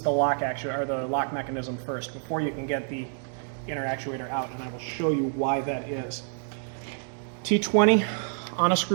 the lock actuator, or the lock mechanism first, before you can get the inner actuator out. And I will show you why that is. T20 on a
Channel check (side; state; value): left; silent; 60 dB below the other